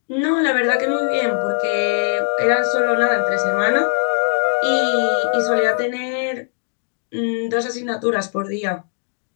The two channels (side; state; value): right; silent; digital silence